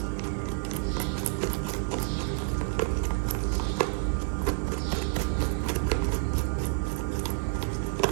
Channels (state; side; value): silent; left; digital silence